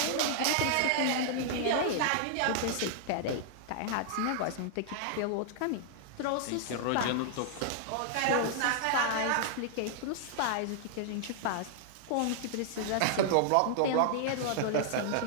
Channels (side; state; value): both; different; correlation -0.01